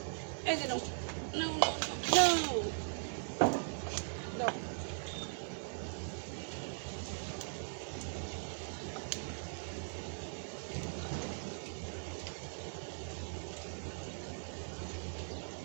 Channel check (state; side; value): silent; left; 51 dB below the other